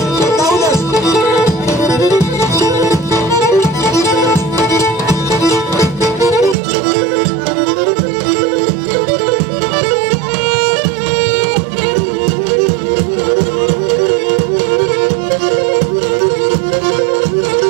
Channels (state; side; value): drops out; left; at 6.6 s